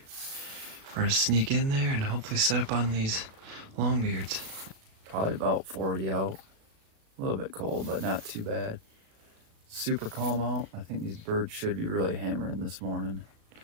We're gonna sneak in there and hopefully set up on these longbeards. Probably about 40 out. A little bit cold, but not too bad. Super calm out. I think these birds should be really hammering this morning.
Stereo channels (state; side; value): late; left; 37 ms